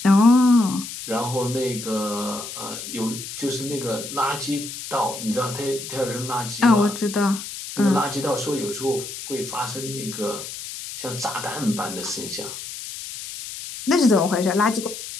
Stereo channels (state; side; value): noise; left; hiss, 9 dB below the sound